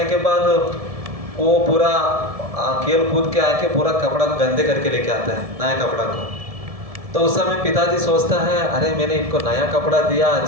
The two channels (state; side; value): late; left; 1.7 ms